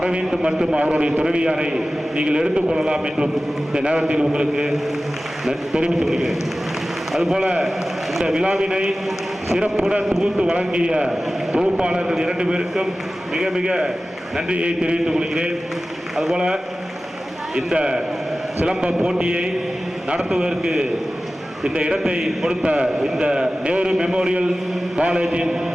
மற்றும் அவருடைய துணைவியாரை நீங்கள் எடுத்துக்கொள்ளலாம் என்றும் இந்த நேரத்தில் உங்களுக்கு தெரிவித்துக் கொள்கிறேன். அதுபோல இந்த விழாவினை சிறப்புடன் தொகுத்து வழங்கிய தொகுப்பாளர்கள் 2 பேருக்கும் மிக மிக நன்றியை தெரிவித்துக் கொள்கிறேன். அதுபோல இந்த சிலம்ப போட்டியை நடத்துவதற்கு இந்த இடத்தை கொடுத்த இந்த நேரு மெமோரியல் காலேஜின்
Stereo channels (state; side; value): normal; both; correlation 0.96